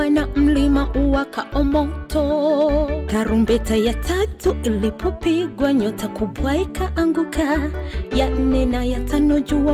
na mlima uwakao moto. Tarumbeta ya tatu ilipopigwa nyota kubwa ikaanguka, ya 4 na ya 5 jua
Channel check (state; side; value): identical; both; correlation 1.00